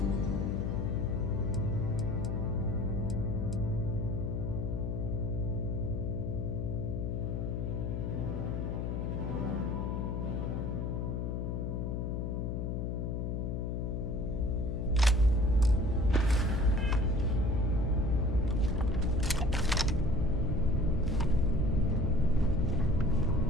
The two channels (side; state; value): left; noise; hum, 1 dB below the sound